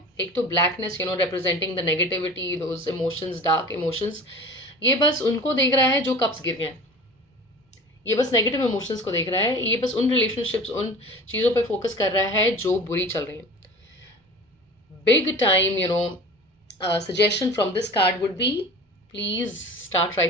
एक तो blackness, representing the negativity, those emotions, dark emotions. ये बस उनको देख रहा है जो कप्स गिर गए हैं. ये बस नेगेटिव इमोशंस को देख रहा है. ये बस उन रिलेशनशिप्स, उन चीज़ों पे फोकस कर रहा है जो बुरी चल रही हैं. Big time suggestion from this card would be, please start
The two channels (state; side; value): normal; both; correlation 0.39